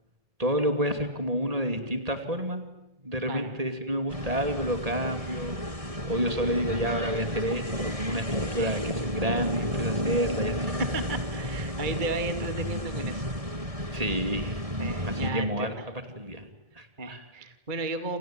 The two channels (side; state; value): left; late; 1.6 ms